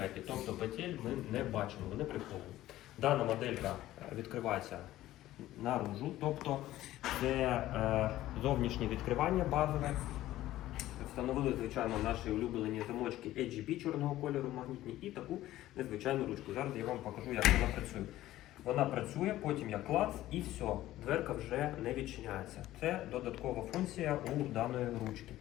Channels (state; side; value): quieter; right; 14.9 dB